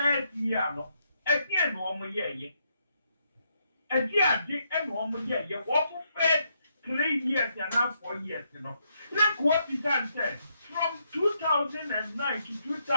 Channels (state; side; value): inverted; both; correlation -0.77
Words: year no again no mo ye Adi and woman, yeah, what fed 3 years and now 4 years, you know. Look what the man said from 2009 to